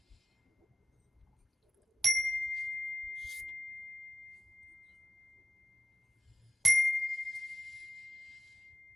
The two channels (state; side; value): normal; both; correlation 0.91